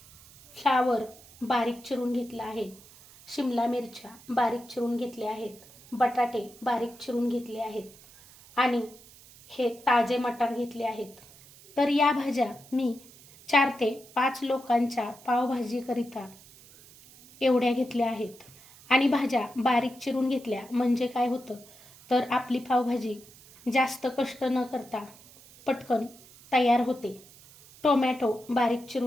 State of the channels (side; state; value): right; noise; hiss, 23 dB below the sound